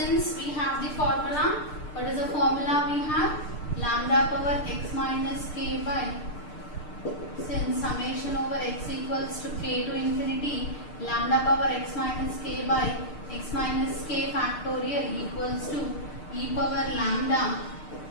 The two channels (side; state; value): right; late; 6.6 ms